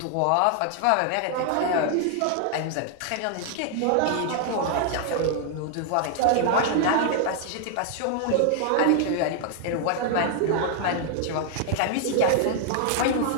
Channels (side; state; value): both; different; correlation 0.00